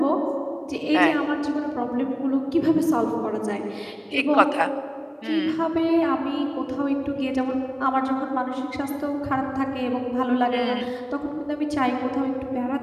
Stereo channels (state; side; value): identical; both; correlation 1.00